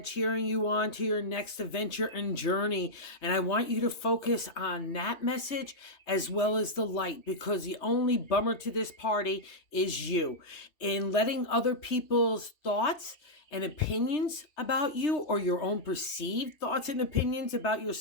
cheering you on to your next adventure and journey. And I want you to focus on that message as well as the light, because the only bummer to this party is you. In letting other people's thoughts and opinions about you, or your own perceived thoughts and opinions about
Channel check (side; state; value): right; late; 3.2 ms